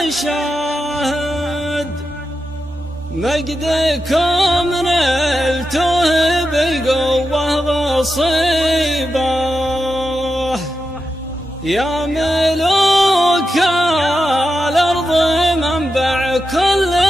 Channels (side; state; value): both; normal; correlation 0.89